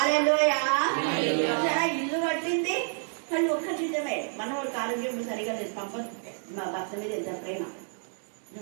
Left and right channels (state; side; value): silent; left; 59 dB below the other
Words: ఇల్లు కట్టింది కానీ ఒక్క జీతమే. మనవాళ్ళకి ఆరోగ్యం సరిగా లేదు, మా భర్త మీద ఎంత ప్రేమ.